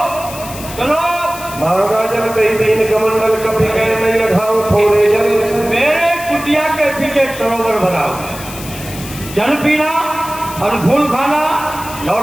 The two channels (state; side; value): noise; left; hiss, 13 dB below the sound